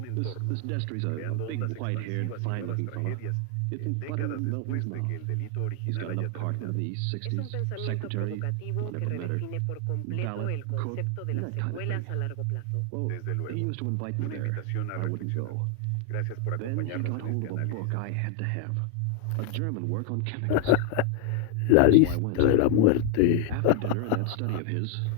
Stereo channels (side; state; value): both; different; correlation 0.00